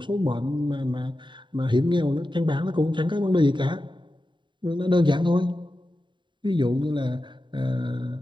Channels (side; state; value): left; late; 0.23 ms